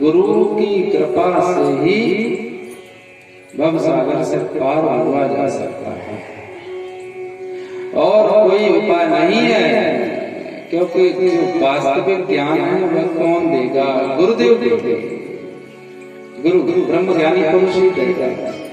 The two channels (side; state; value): both; identical; correlation 1.00